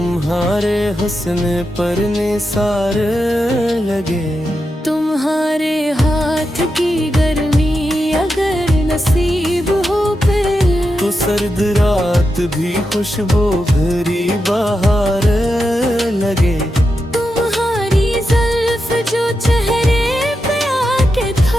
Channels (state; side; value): normal; both; correlation 0.88